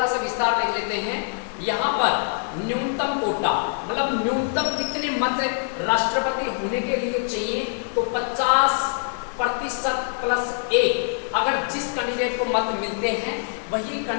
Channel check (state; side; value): silent; right; 63 dB below the other